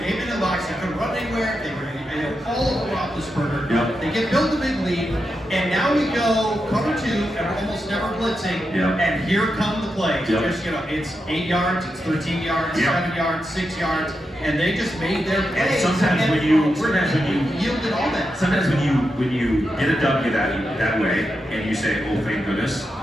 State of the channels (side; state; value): both; normal; correlation 0.87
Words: 8 men in the box. They couldn't run anywhere. They were all over Roethlisberger. They get built a big lead, and now we go cover 2, and we're almost never blitzing. And here come the plays. Just, it's 8 yards, it's 13 yards, 7 yards, 6 yards, and they just made their plays. And sometimes when you yielded all that. Sometimes when you get a W that way, and you say, oh thank goodness,